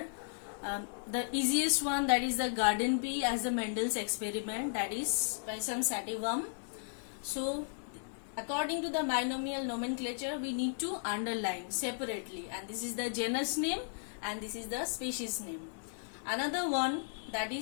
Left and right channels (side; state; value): right; silent; digital silence